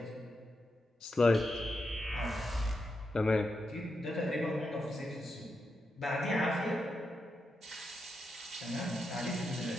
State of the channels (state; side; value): normal; both; correlation 0.86